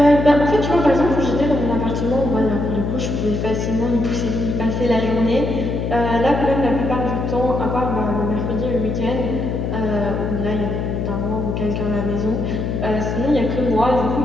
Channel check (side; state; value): left; noise; hum, 2 dB below the sound